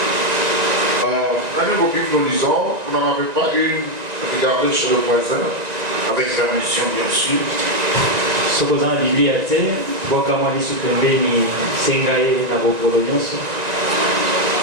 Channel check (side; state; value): left; late; 1.9 ms